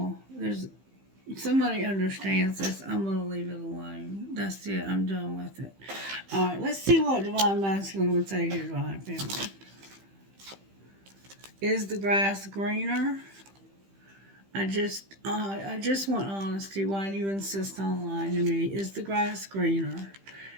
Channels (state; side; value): late; left; 15 ms